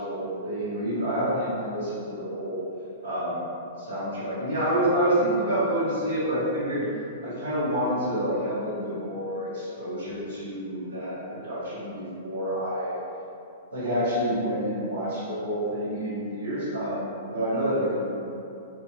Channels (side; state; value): both; inverted; correlation -0.31